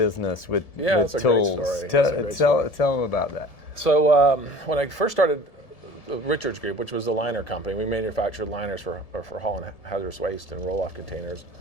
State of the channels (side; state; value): right; late; 1.7 ms